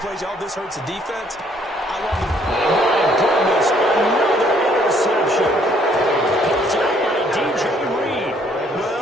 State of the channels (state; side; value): normal; both; correlation 0.65